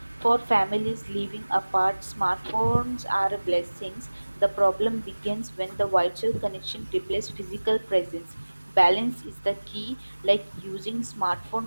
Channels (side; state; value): both; inverted; correlation -1.00